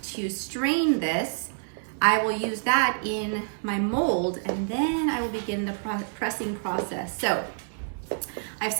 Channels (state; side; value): silent; left; digital silence